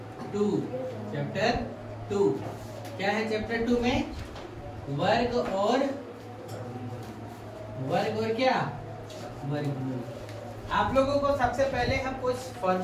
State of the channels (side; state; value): both; identical; correlation 1.00